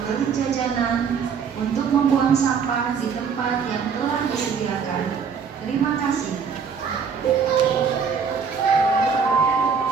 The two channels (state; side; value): quieter; left; 6.3 dB